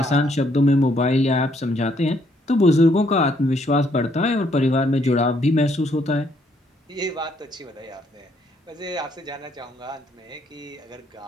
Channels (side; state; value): both; normal; correlation 0.70